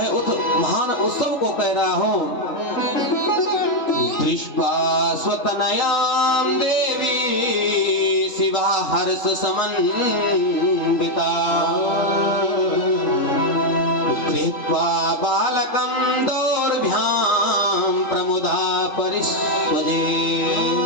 उस महान उत्सव को कह रहा हूँ। दृष्ट्वा स्वतनयां देवी शिवा हर्ष समन्विता कृत्वा बालकं दौर्भ्यां प्रमुदा परिस्वजे।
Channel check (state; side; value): late; right; 3.4 ms